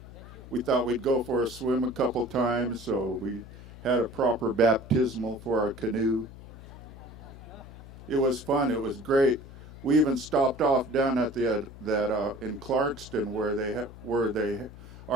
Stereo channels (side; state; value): left; noise; hum, 16 dB below the sound